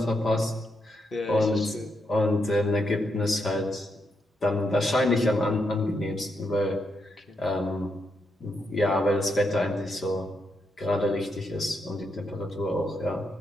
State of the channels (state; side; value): normal; both; correlation 0.81